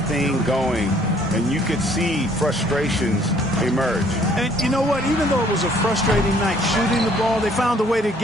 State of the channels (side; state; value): both; normal; correlation 0.61